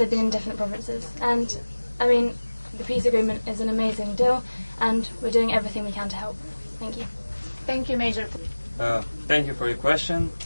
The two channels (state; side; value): inverted; both; correlation -1.00